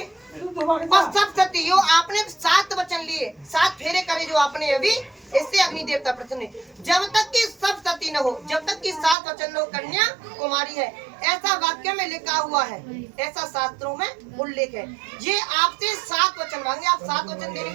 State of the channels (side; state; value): left; drops out; at 9.2 s